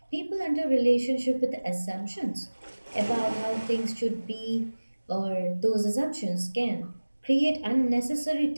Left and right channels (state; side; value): inverted; both; correlation -1.00